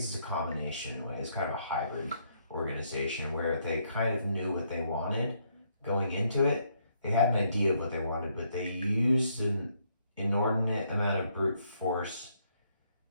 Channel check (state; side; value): inverted; both; correlation -0.72